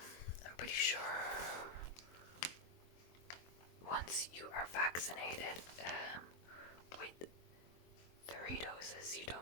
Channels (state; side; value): late; right; 23 ms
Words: pretty sure once you are vaccinated with 3 doses, you